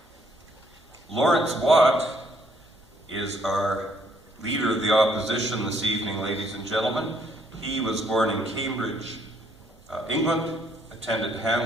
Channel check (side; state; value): both; normal; correlation 0.67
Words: Laurence Watt is our Leader of the Opposition this evening, ladies and gentlemen. He was born in Cambridge, England, attended